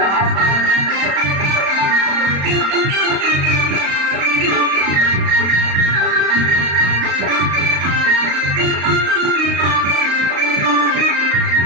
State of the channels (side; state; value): left; late; 35 ms